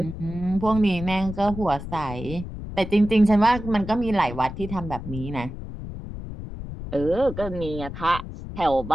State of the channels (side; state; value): left; noise; rumble, 10 dB below the sound